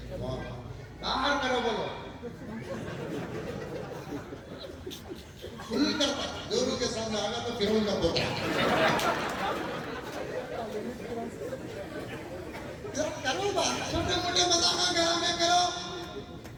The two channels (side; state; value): both; identical; correlation 1.00